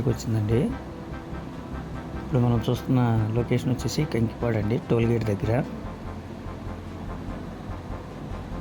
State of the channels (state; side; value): identical; both; correlation 1.00